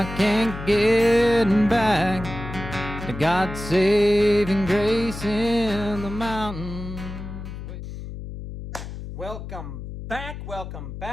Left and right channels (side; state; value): left; noise; hum, 9 dB below the sound